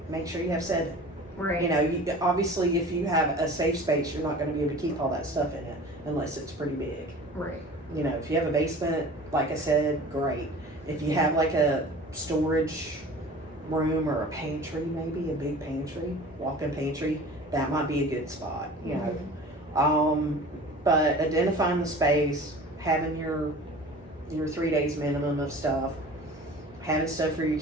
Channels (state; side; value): normal; both; correlation 0.41